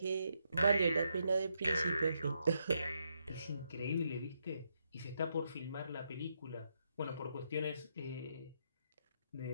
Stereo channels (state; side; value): inverted; both; correlation -0.80